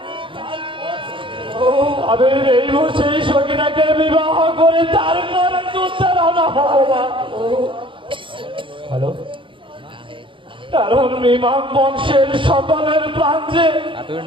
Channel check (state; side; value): late; left; 0.25 ms